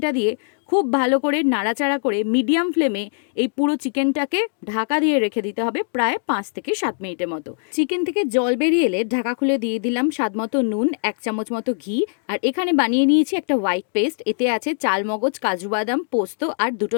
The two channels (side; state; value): right; silent; digital silence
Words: দিয়ে খুব ভালো করে নাড়াচাড়া করে মিডিয়াম ফ্লেমে এই পুরো চিকেনটাকে ঢাকা দিয়ে রেখে দিতে হবে প্রায় 5 থেকে 7 মিনিটের মতো। চিকেন থেকে জল বেরিয়ে এলে ঢাকা খুলে দিয়ে দিলাম স্বাদ মতো নুন, 1 চামচ মতো ঘি। আর এখানে বানিয়ে নিয়েছি একটা হোয়াইট পেস্ট। এতে আছে চালমগজ, কাজু বাদাম, পোস্ত আর